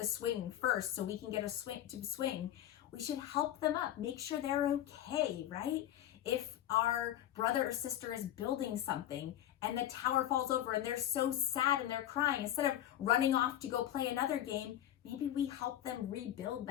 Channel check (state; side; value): quieter; right; 12.1 dB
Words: swing first so we can get to swing, we should help them up, make sure they're okay, right? If our brother or sister is building something and the tower falls over and they're so sad and they're crying, instead of running off to go play another game, maybe we help them rebuild